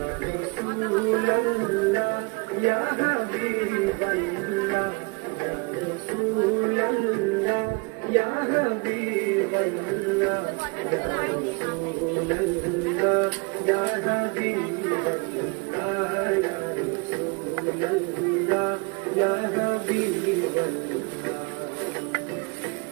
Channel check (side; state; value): left; quieter; 30.5 dB